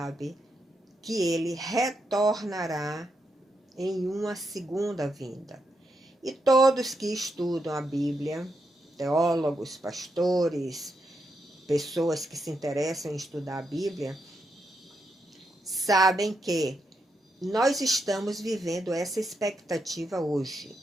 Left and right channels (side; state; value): both; normal; correlation 0.82